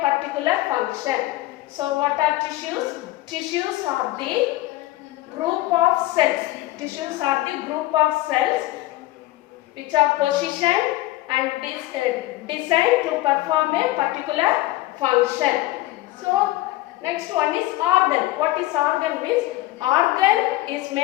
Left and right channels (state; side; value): quieter; right; 17.4 dB